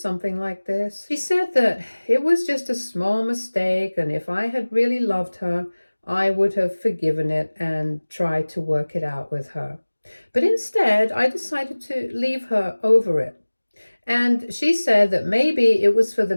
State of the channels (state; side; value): inverted; both; correlation -1.00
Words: like this. She said that it was just a small mistake, and if I had really loved her, I would have forgiven it and tried to work it out with her. But instead, I decided to leave her over it. And she said that maybe it was for the